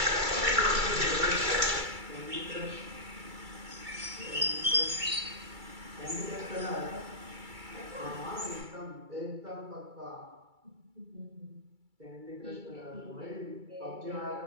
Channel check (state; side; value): late; left; 2.3 ms